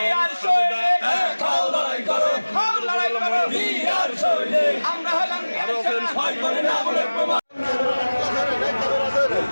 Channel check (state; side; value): inverted; both; correlation -1.00